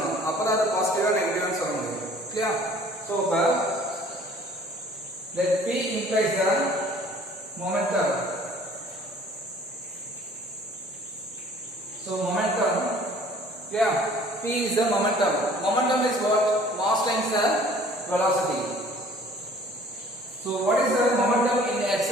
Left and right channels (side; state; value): both; normal; correlation 0.53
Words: அப்பதான் அது பாசிட்டிவா நெகட்டிவா சொல்ல முடியும். Clear? So let P implies the momentum. So momentum, yeah, P is the momentum. Momentum is what? Mass times the velocity. So what is the momentum in x